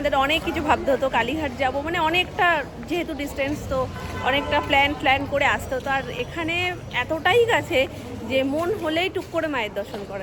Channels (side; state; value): both; identical; correlation 1.00